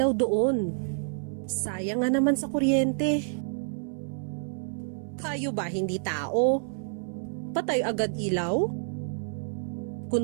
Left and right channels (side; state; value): left; silent; 59 dB below the other